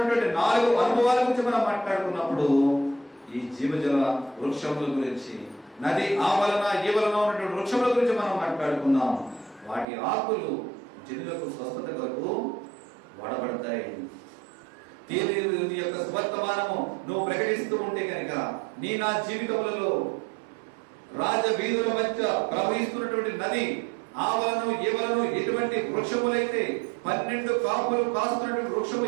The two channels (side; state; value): left; drops out; at 9.9 s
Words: 4 అనుభవాల గురించి మనం మాట్లాడుకున్నప్పుడు, ఈ జీవజల వృక్షముల గురించి, నది ఆవలన ఈవలన ఉన్నటువంటి వృక్షముల గురించి మనం మాట్లాడుకున్నాం. వాటి ఆకులు జనులకు స్వస్థత కొరకు వాడబడతాయి. దేవుని యొక్క స్వర్తమానము నువ్వు ప్రకటిస్తూ ఉంటే కనుక, నీ నా జీవితములలో రాజ వీధుల మధ్య ప్రవహిస్తున్నటువంటి నది ఆవలను ఈవలను ఎటువంటి వృక్షములైతే 12 కాపులు కాస్తున్నటువంటి వృక్షము